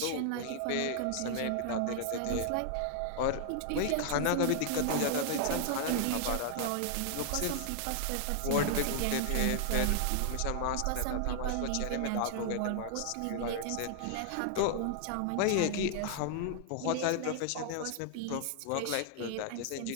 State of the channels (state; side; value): different; both; correlation -0.01